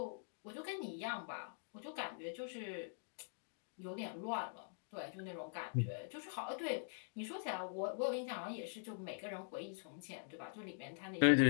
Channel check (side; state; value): right; silent; digital silence